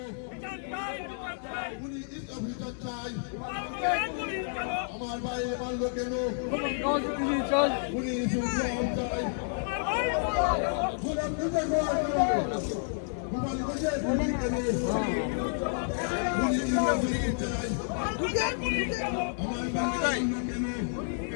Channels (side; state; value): right; silent; digital silence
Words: গুলি অভিযোগ চাই আমার ভাই মারল কেন গুলি চাই গোপালগঞ্জে গুলি কেন গুলি চাই আমার ভাই